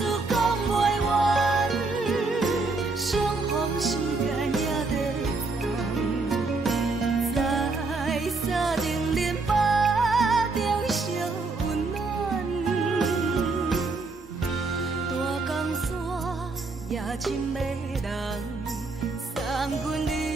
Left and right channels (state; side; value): quieter; left; 3.7 dB